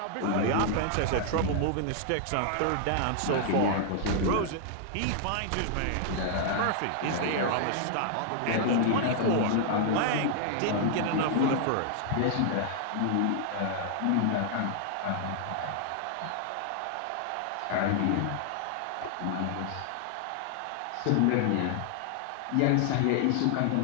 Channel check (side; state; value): both; different; correlation 0.00